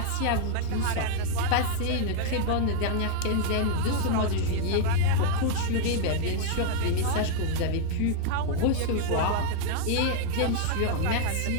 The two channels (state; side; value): different; both; correlation 0.00